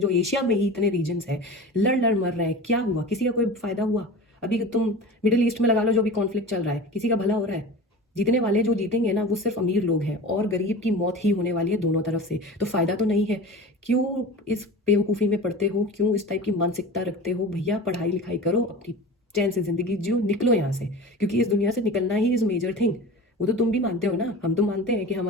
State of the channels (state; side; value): normal; both; correlation 0.34